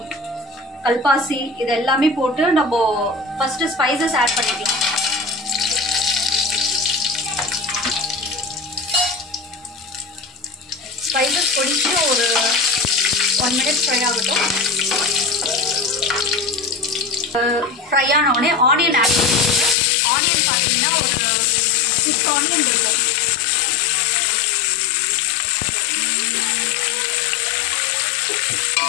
கல்பாசி, இது எல்லாமே போட்டு நம்ம ஃபர்ஸ்ட் ஸ்பைசஸ் ஆட் பண்ணிக்கலாம். ஸ்பைசஸ் பொடிச்சு ஒரு 1 மினிட் ஃப்ரை ஆகட்டும். ஃப்ரை ஆன உடனே ஆனியன் ஆட் பண்ணிக்கோங்க. ஆனியன் பார்த்தீங்கன்னா ஒரு 6 ஆனியன் இருக்கும்.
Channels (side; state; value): right; drops out; at 19.8 s